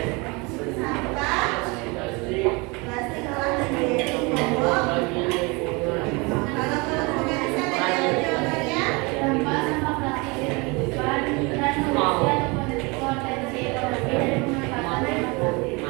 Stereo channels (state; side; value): quieter; left; 27.5 dB